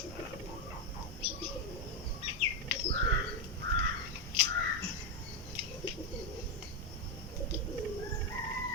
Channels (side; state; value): both; normal; correlation 0.06